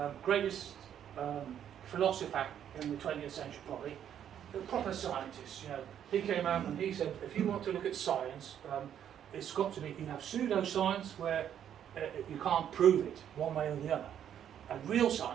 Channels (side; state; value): left; quieter; 9.7 dB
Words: greatest philosopher in the 20th century probably, a proper scientist, he came out and he said, if you want to look at science, it's got to be, you have pseudoscience where you can't prove it one way or the other. And real